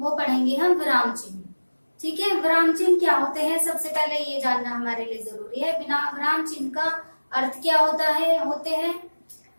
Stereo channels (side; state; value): both; inverted; correlation -1.00